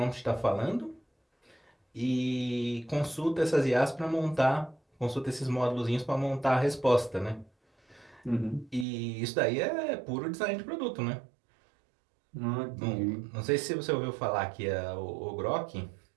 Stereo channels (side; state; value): left; drops out; at 8.8 s